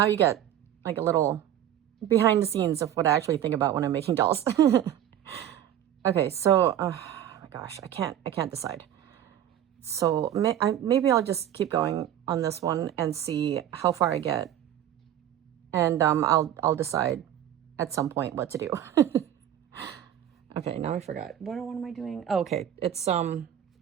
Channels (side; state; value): left; quieter; 11.0 dB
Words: you get like a little behind the scenes of what I actually think about when I'm making dolls. Okay, so oh my gosh, I can't decide. So maybe I'll just keep going on this one and see how far I get, and I'll decide at some point what to do. Okay, now I forgot. What am I doing? Oh, okay, it's